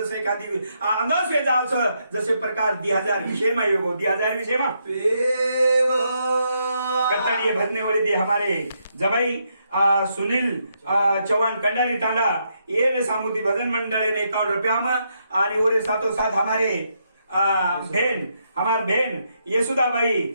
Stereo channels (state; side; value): inverted; both; correlation -0.78